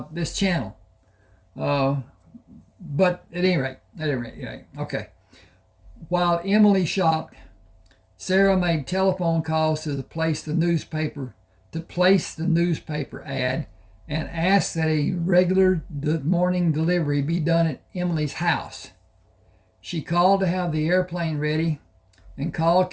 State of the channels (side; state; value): both; identical; correlation 1.00